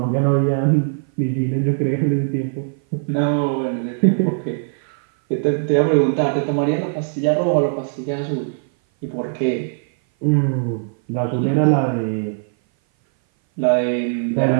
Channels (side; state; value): left; silent; 58 dB below the other